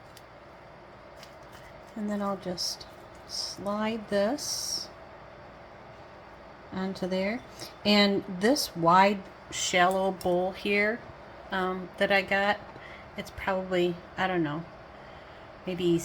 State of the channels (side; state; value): both; identical; correlation 1.00